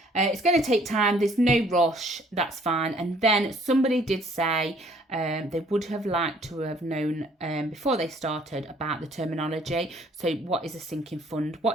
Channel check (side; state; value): both; normal; correlation 0.60